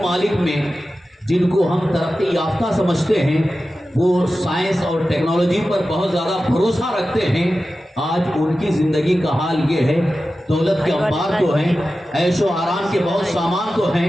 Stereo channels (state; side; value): normal; both; correlation 0.94